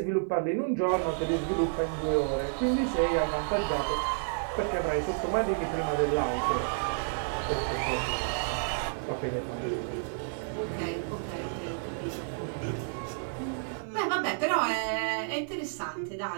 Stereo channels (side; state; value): left; silent; 58 dB below the other